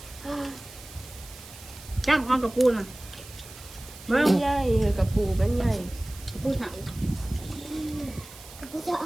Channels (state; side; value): noise; right; hiss, 17 dB below the sound